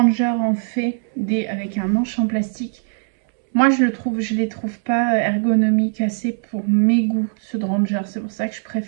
en fait des avec un manche en plastique. Moi, je les trouve pas ergonomiques assez pour mes goûts, ceux de Ranger. C'est pour ça que je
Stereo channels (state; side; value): silent; left; digital silence